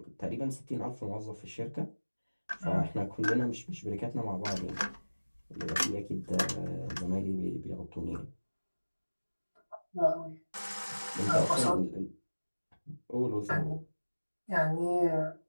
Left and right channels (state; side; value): inverted; both; correlation -1.00